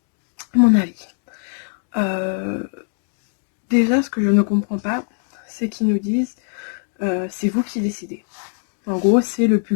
mon avis. Déjà, ce que je ne comprends pas, c'est qu'ils nous disent c'est vous qui décidez. En gros, c'est le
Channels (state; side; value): silent; right; digital silence